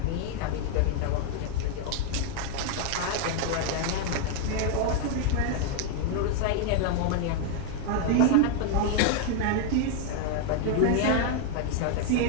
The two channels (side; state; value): both; different; correlation 0.01